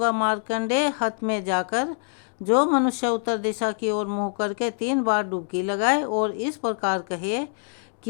मार्कंडेय हत में जाकर जो मनुष्य उत्तर दिशा की ओर मुँह करके 3 बार डुबकी लगाए और इस प्रकार कहे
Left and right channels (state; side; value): silent; right; digital silence